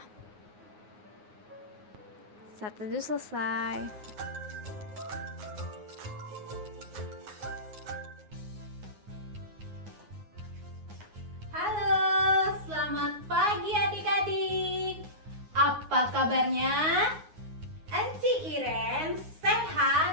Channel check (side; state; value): left; late; 9.5 ms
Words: Saat teduh selesai. Halo, selamat pagi adik-adik. Apa kabarnya? Enci Iren